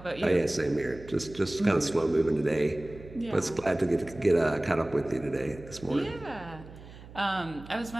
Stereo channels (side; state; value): right; noise; hum, 17 dB below the sound